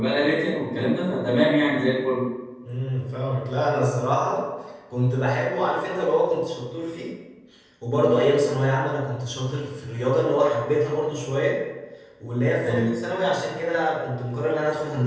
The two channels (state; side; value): identical; both; correlation 1.00